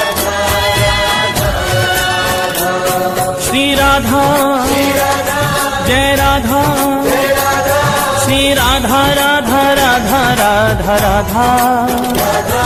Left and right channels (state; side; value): identical; both; correlation 1.00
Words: राधा राधा राधा राधा राधा